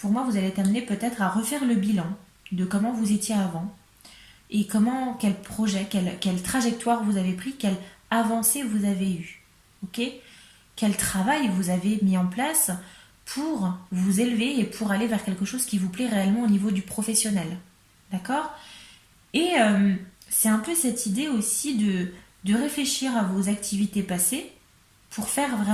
moi, vous allez être amené peut-être à refaire le bilan de comment vous étiez avant et quel projet, quelle trajectoire vous avez pris, quelle avancée vous avez eue. Ok? Quel travail vous avez mis en place pour vous élever et pour aller vers quelque chose qui vous plaît réellement au niveau du professionnel. D'accord? Et c'est un peu cette idée aussi de réfléchir à vos activités passées pour faire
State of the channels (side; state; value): both; identical; correlation 1.00